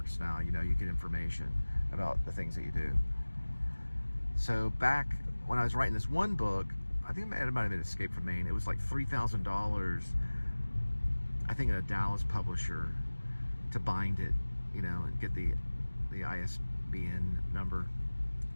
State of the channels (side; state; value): both; inverted; correlation -1.00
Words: now. You know, you get information about the things that you do. So back when I was writing this one book, I think it might have been Escape from Maine. It was like $3,000, I think, at a Dallas publisher to bind it, you know, and get the ISBN number.